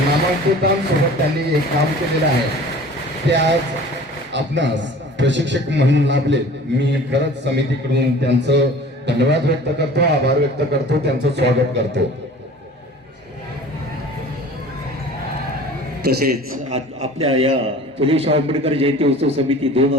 त्यांनी एक काम केलेलं आहे. ते आज आपणास प्रशिक्षक म्हणून लाभले. मी खरंच समितीकडून त्यांचं धन्यवाद व्यक्त करतो, आभार व्यक्त करतो, त्यांचं स्वागत करतो. तसेच आपल्या या फुले शाहू आंबेडकर जयंती उत्सव समिती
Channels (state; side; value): normal; both; correlation 0.43